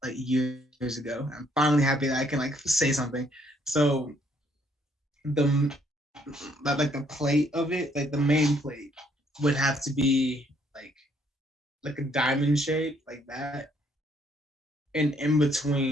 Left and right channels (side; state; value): both; normal; correlation 0.67